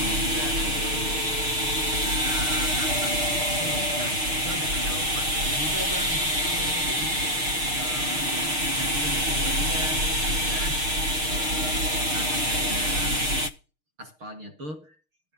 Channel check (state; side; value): late; left; 6.5 ms